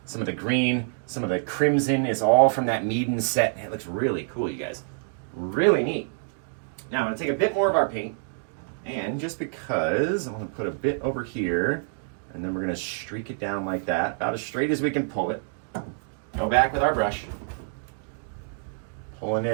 Some of the green, some of the crimson is all from that Meeden set. It looks really cool, you guys. Really neat. Now, I'm going to take a bit more of our paint, and just because, I'm going to put a bit over here, and then we're going to streak it down like that, about as straight as we can pull it. Go back with our brush. Pulling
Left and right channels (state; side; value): silent; left; digital silence